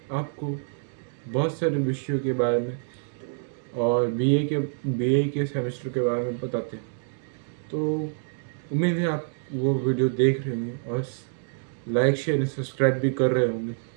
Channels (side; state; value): left; silent; digital silence